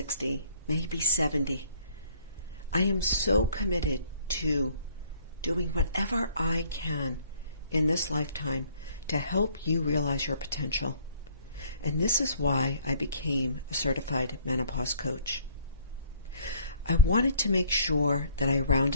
maybe 70. I am so committed to doing whatever I can in this lifetime to help you realize your potential. And this is why I became a certified menopause coach. I wanted to make sure that I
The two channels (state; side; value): inverted; both; correlation -0.58